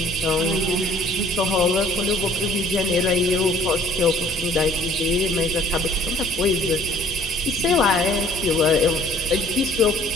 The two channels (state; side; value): normal; both; correlation 0.55